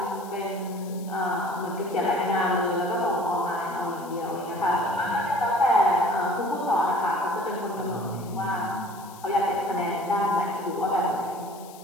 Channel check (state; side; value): noise; left; hiss, 20 dB below the sound